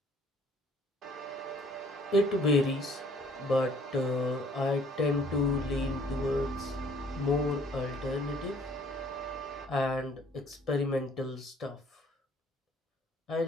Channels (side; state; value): both; normal; correlation 0.59